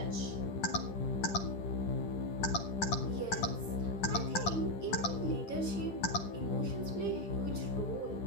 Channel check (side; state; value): right; late; 9.9 ms